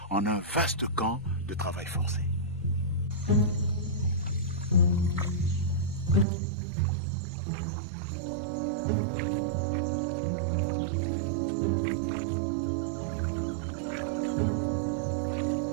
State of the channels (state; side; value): drops out; left; at 6.2 s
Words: en un vaste camp de travail forcé.